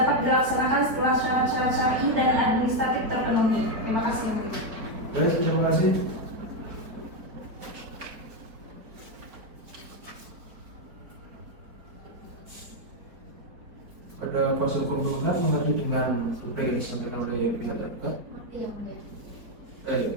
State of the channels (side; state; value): left; late; 4.5 ms